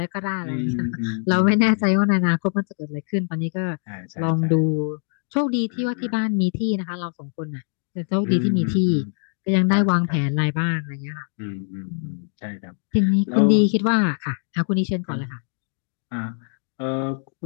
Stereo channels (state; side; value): silent; right; digital silence